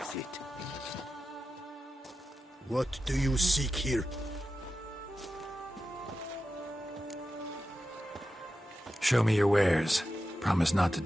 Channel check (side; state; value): both; normal; correlation 0.91